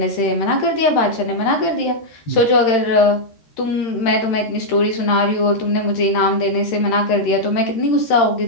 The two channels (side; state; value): right; late; 13 ms